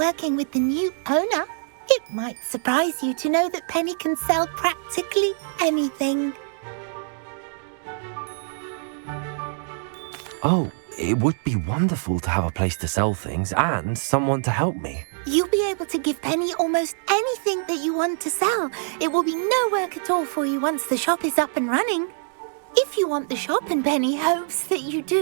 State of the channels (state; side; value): silent; left; digital silence